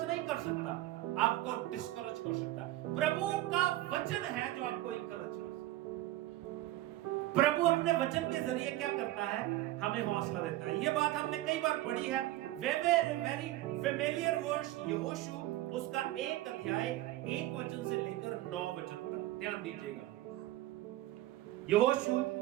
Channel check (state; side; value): quieter; left; 16.0 dB